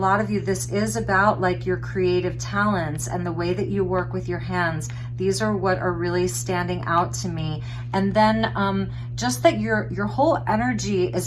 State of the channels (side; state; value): both; identical; correlation 1.00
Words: of you, this is about like your creative talents and the way that you work with your hands. These are what are really standing out to me. And then just that your whole energy